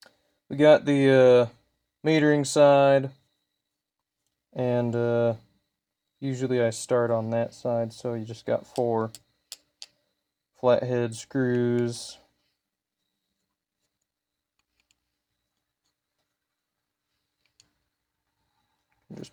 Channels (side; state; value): both; identical; correlation 1.00